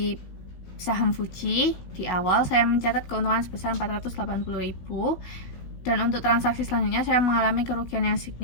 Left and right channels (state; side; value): late; right; 16 ms